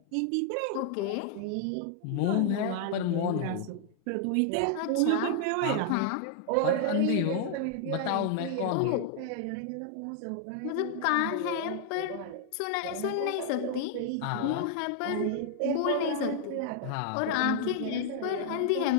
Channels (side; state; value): both; different; correlation 0.00